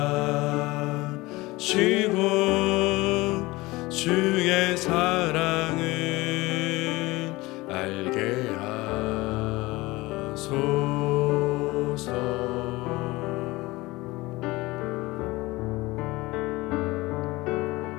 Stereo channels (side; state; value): right; quieter; 21.0 dB